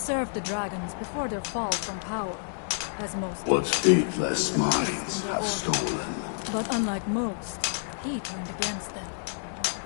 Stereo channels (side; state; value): right; silent; digital silence